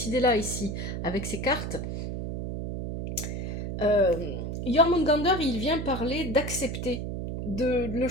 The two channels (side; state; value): right; noise; hum, 4 dB below the sound